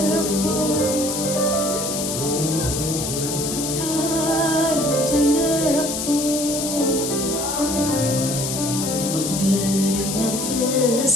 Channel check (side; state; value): left; noise; hiss, 3 dB below the sound